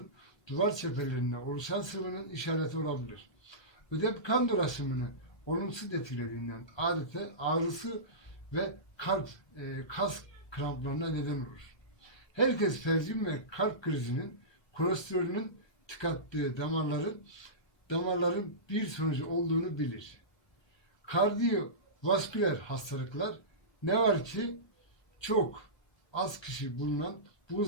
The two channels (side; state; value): right; late; 1.4 ms